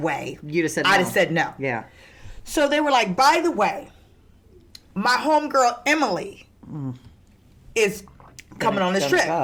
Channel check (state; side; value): identical; both; correlation 1.00